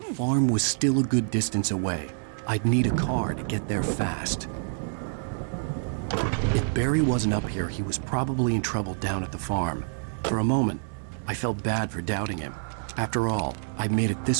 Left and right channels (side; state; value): left; silent; digital silence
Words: farm was still a good distance away. I'd need a car to get there fast. If Barry wasn't up here, he was probably in trouble down at the farm. For a moment, I felt bad for doubting him. After all, I'd made it